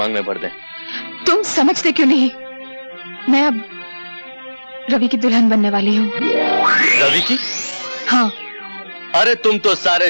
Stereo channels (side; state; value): both; inverted; correlation -1.00